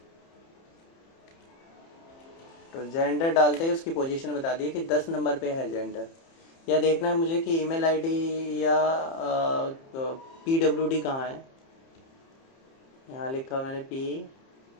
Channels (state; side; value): late; right; 30 ms